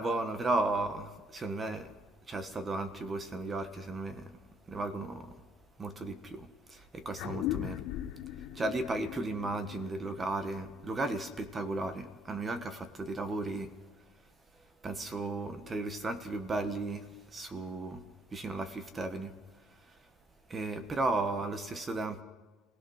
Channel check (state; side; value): normal; both; correlation 0.69